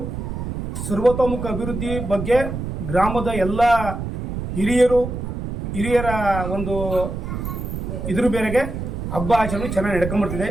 ಸರ್ವತೋಮುಖ ಅಭಿವೃದ್ಧಿ ಬಗ್ಗೆ ಗ್ರಾಮದ ಎಲ್ಲ ಹಿರಿಯರ ಒಂದು ಇದ್ರ ಮೇರೆಗೆ ಹಬ್ಬ ಆಚರಣೆ ಚೆನ್ನಾಗಿ ನಡ್ಕೊಂಡ್ಬರ್ತಿದೆ.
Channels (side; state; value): right; noise; rumble, 5 dB below the sound